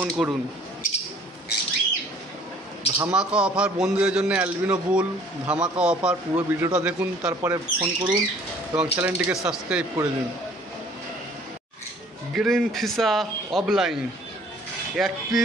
করুন। ধামাকা অফার বন্ধুদের জন্য, অ্যালবিনো বুল ধামাকা অফার। পুরো ভিডিওটা দেখুন, তারপরে ফোন করুন এবং চ্যানেলটিকে সাবস্ক্রাইব করে দিন। Green visa offline 1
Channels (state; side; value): normal; both; correlation 0.55